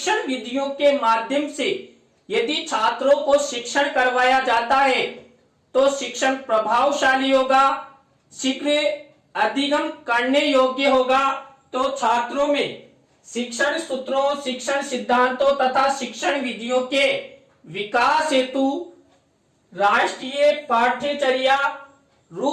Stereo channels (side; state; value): both; identical; correlation 1.00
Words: विधियों के माध्यम से यदि छात्रों को शिक्षण करवाया जाता है तो शिक्षण प्रभावशाली होगा, शीघ्र अधिगम करने योग्य होगा। तो छात्रों में शिक्षण सूत्रों, शिक्षण सिद्धांतों तथा शिक्षण विधियों के विकास हेतु राष्ट्रीय पाठ्यचर्या